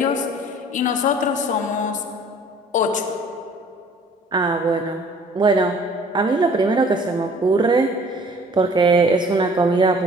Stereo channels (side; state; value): both; normal; correlation 0.52